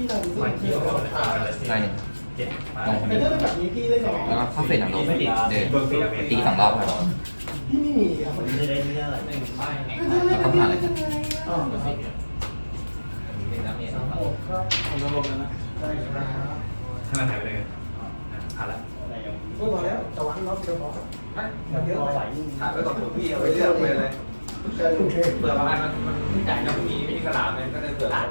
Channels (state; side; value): inverted; both; correlation -1.00